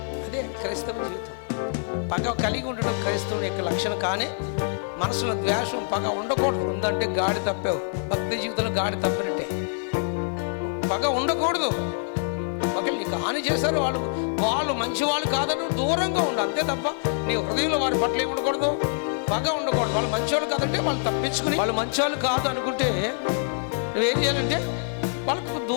అదే క్రైస్తవ జీవితం. పగ కలిగి ఉండడం క్రైస్తవుని యొక్క లక్షణం. కానీ మనసులో ద్వేషం, పగ ఉండకూడదు. ఉందంటే గాడి తప్పావు, భక్తి జీవితంలో గాడి తప్పినట్టే. పగ ఉండకూడదు. ఒకవేళ నీకు హాని చేశారు, వాళ్ళు మంచి వాళ్ళు కాదని దూరంగా ఉండు, అంతే తప్ప నీ హృదయంలో వారి పట్ల ఏమి ఉండకూడదు, పగ ఉండకూడదు. వాళ్ళు మంచివాళ్ళు కాదంటే వాళ్ళు తప్పించుకుని, వాళ్ళు మంచివాళ్ళు కాదు అనుకుంటే నువ్వేం చేయాలంటే వాళ్ళకు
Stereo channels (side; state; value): right; silent; digital silence